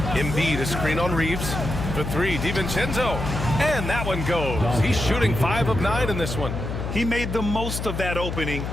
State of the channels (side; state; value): left; noise; hum, 4 dB below the sound